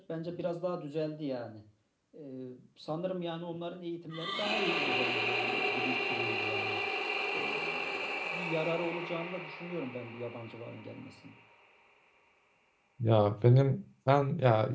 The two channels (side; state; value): both; identical; correlation 1.00